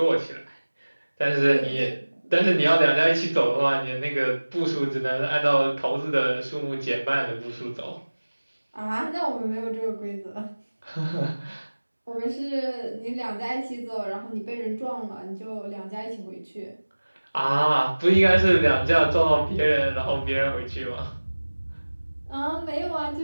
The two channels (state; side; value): inverted; both; correlation -1.00